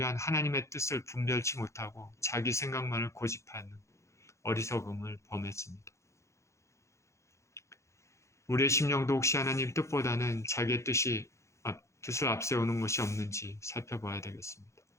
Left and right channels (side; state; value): right; late; 0.14 ms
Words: 하나님의 뜻을 분별치 못하고 자기 생각만을 고집하는 어리석음을 범했습니다. 우리의 심령도 혹시 하나님 뜻보다는 자기의 뜻을 앞세우는 것이 없는지 살펴봐야 되겠습니다.